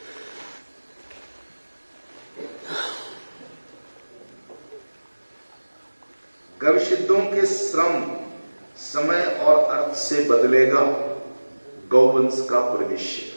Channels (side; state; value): both; inverted; correlation -1.00